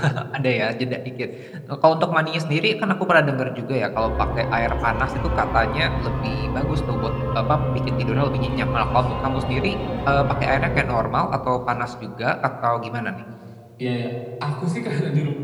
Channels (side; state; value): both; identical; correlation 1.00